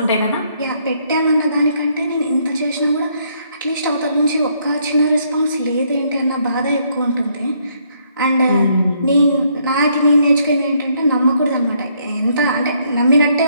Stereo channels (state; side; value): inverted; both; correlation -0.71